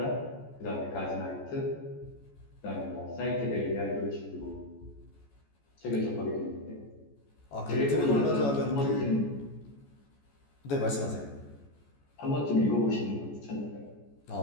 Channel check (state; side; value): late; right; 14 ms